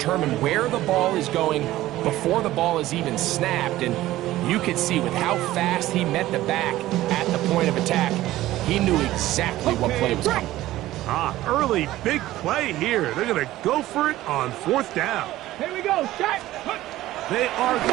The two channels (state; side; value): quieter; left; 15.7 dB